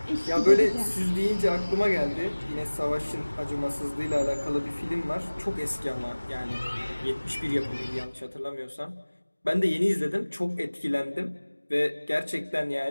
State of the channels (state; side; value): inverted; both; correlation -1.00